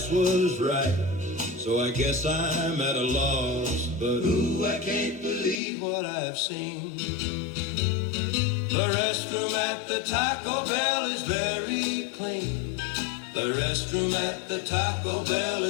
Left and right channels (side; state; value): right; drops out; at 5.6 s